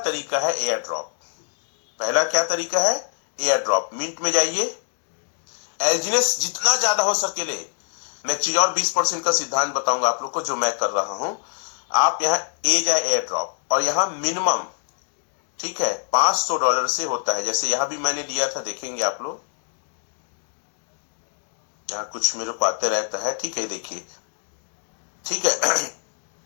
है एयर ड्रॉप। पहला क्या तरीका है, एयर ड्रॉप। मिंट में जाइए, एल्जिनेस जितना ज्यादा हो सके ले। मैं एक चीज और 20% का सिद्धांत बताऊंगा आप लोग को जो मैं कर रहा हूं। आप यहां ए जाए एयर ड्रॉप, और यहां मिनिमम, ठीक है, $500 से होता है। जैसे यहां भी मैंने लिया था, देखेंगे आप लोग, यहाँ कुछ मेरे को आते रहता है, ठीक है, देखिए, ठीक है।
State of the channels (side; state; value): right; silent; digital silence